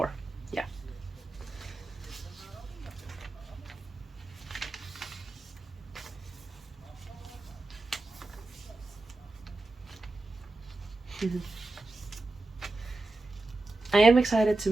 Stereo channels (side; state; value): left; quieter; 3.0 dB